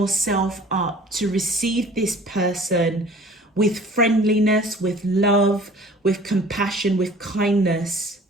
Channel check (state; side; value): normal; both; correlation 0.49